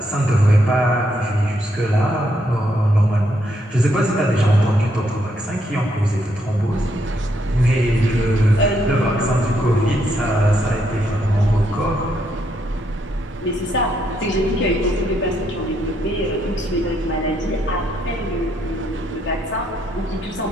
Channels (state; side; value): normal; both; correlation 0.75